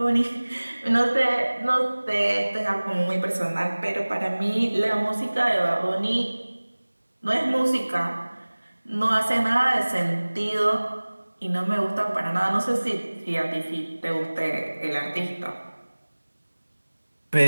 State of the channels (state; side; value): inverted; both; correlation -1.00